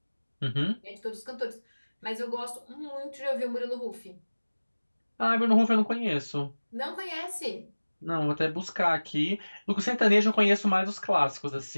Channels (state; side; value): inverted; both; correlation -1.00